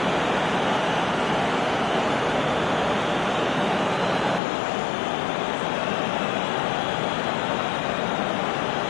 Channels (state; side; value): drops out; right; at 4.4 s